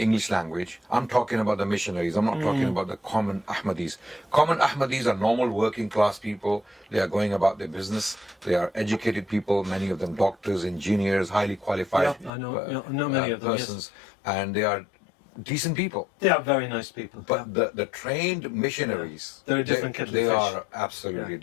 English language, I'm talking about the missionaries, I'm not talking about the common Ahmadis. Common Ahmadis are normal working class people. They are going about their business. They are educated people, many of them doctors, engineers, highly qualified I know many of them, persons. Yes. And they are decent people. They are very nice people. But the trained missionaries, they're a different kettle of they fish. are absolutely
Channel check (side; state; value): right; drops out; at 12.3 s